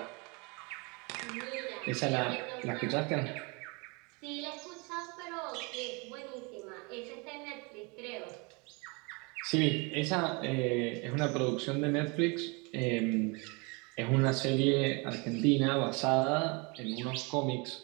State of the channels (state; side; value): quieter; left; 29.9 dB